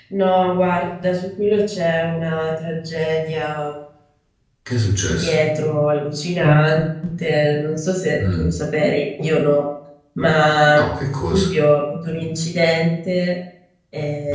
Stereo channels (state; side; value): identical; both; correlation 1.00